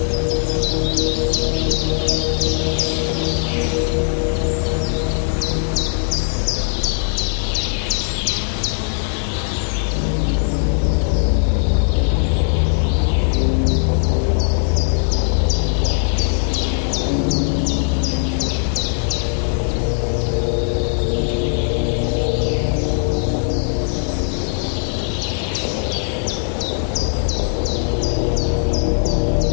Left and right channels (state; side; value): silent; right; digital silence